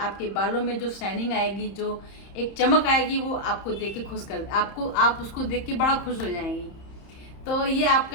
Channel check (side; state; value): right; late; 31 ms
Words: बालों में जो शाइनिंग आएगी, जो एक चमक आएगी, वो आपको देख के आप उसको देख के बड़ा खुश हो जाएंगी। तो ये